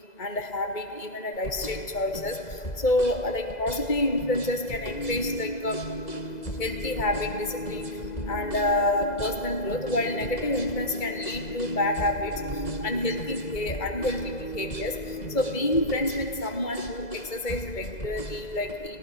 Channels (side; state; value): right; late; 2.0 ms